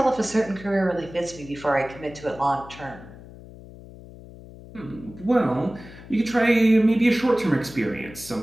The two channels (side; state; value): left; noise; hum, 18 dB below the sound